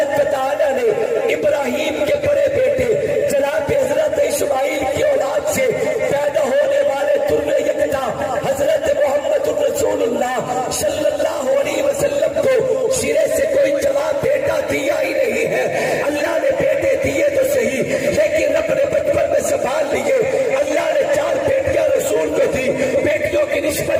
و تعالی نے ابراہیم کے بڑے بیٹے جناب حضرت اسماعیل کی اولاد سے پیدا ہونے والے در یکتا حضرت محمد رسول اللہ صلی اللہ علیہ وسلم کو سرے سے کوئی جواب بیٹا دیا ہی نہیں ہے. اللہ نے بیٹے دیے تو صحیح، لیکن اپنے بچپن میں سنبھال لیے. اللہ نے 4 بیٹیاں رسول کو دی. بیٹیوں کی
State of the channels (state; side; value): identical; both; correlation 1.00